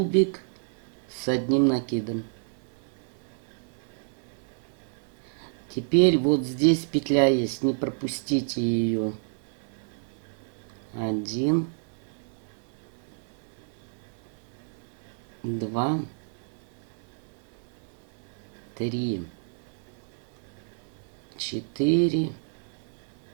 с одним накидом. Теперь вот здесь петля есть, не пропустите ее. 1, 2, 3, 4,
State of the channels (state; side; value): silent; left; 58 dB below the other